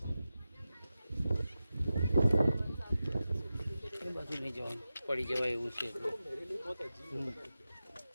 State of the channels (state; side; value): inverted; both; correlation -0.93